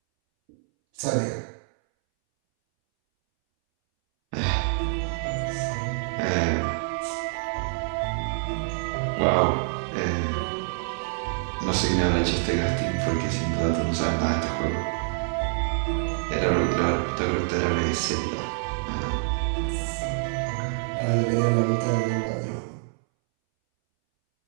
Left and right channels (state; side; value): silent; left; 61 dB below the other